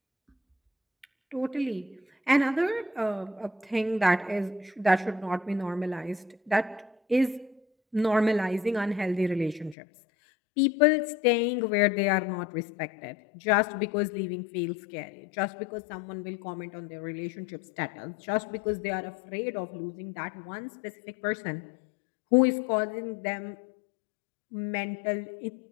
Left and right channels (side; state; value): right; drops out; at 9.8 s